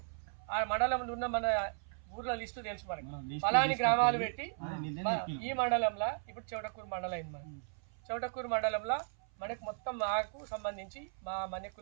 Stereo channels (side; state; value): left; silent; 54 dB below the other